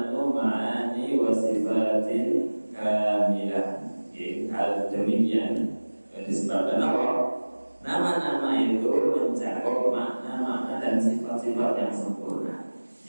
ma'ani wa sifatin kamilah. Hal demikian disebabkan apa? Nama-nama itu mencakup makna-makna dan sifat-sifat yang sempurna.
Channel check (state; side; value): inverted; both; correlation -1.00